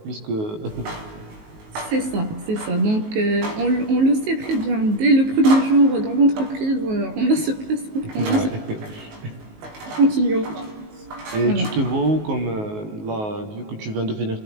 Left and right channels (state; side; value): late; left; 19 ms